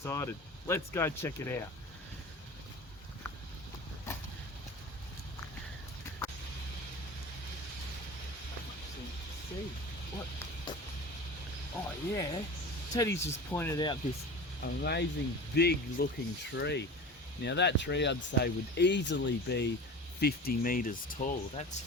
Let's go check it out. See what? Oh yeah, Teddy's just pointed out this amazing big looking tree. Now that tree I'd say would easily be 50 meters tall.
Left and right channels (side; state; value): both; normal; correlation 0.34